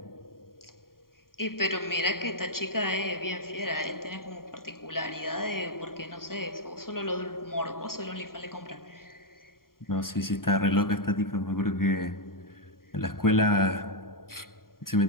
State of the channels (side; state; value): right; late; 0.92 ms